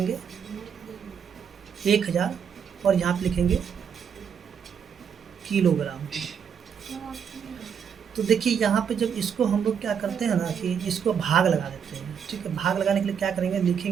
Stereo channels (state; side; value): quieter; left; 7.4 dB